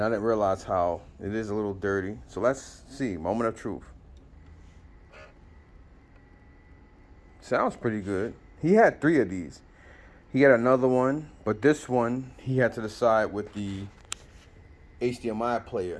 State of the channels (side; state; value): both; identical; correlation 1.00